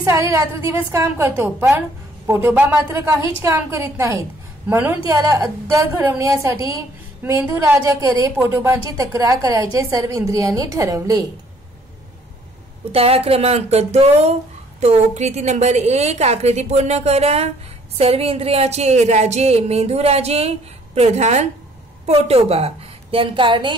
सारी रात्र दिवस काम करतो, पण पोटोबा मात्र काहीच काम करीत नाहीत। म्हणून त्याला अद्दल घडवण्यासाठी मेंदू राजाकडे पोटोबांची तक्रार करायचे सर्व इंद्रियांनी ठरवले। उतारा क्रमांक 2 तो कृती नंबर 1 आकृती पूर्ण करा। सर्व इंद्रियाचे राजे मेंदू राजे, प्रधान पोटोबा। देन कारणे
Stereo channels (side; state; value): both; normal; correlation 0.61